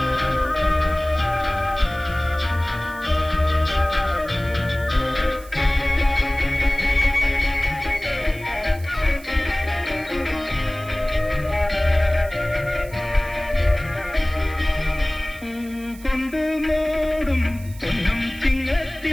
കൊണ്ട് മോടും പൊന്നും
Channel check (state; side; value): noise; right; hiss, 21 dB below the sound